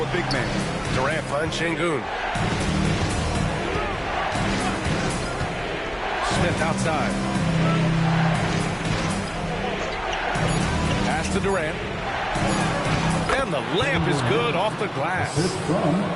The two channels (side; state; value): both; identical; correlation 1.00